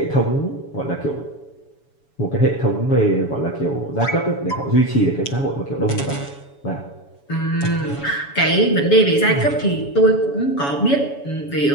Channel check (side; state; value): right; late; 7.1 ms